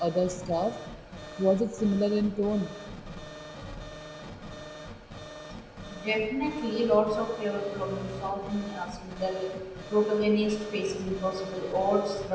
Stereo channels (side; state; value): both; identical; correlation 1.00